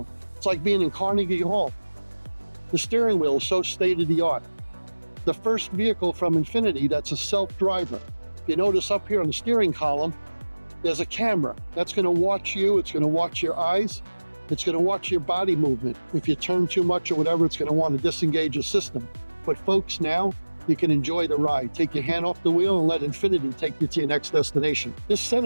It's like being in Carnegie Hall. The steering wheel is so state-of-the-art. The first vehicle from Infiniti that's a self-driver. If you notice up here on the steering column, there's a camera that's going to watch you. It's going to watch your eyes. It's going to watch your body movement. If you turn too much or whatever, it's going to want to disengage your system. But folks, now you can enjoy the ride. Take your hand off the wheel and let Infiniti take you to your next destination. This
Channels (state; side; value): inverted; both; correlation -1.00